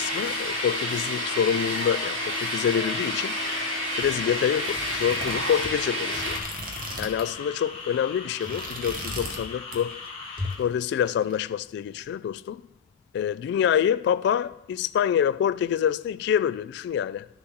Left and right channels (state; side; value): quieter; right; 6.2 dB